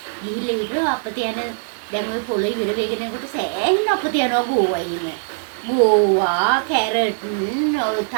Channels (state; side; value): silent; left; 65 dB below the other